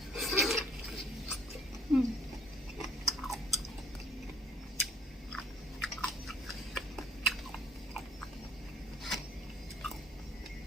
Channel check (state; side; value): normal; both; correlation 0.60